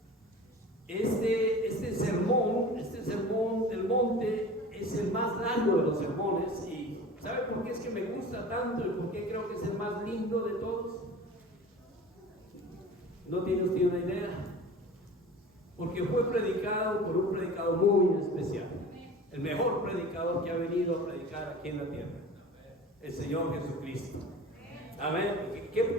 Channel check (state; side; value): normal; both; correlation 0.38